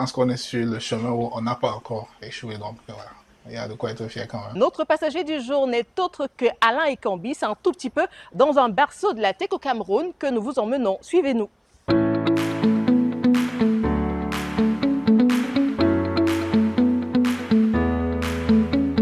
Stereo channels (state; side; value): identical; both; correlation 1.00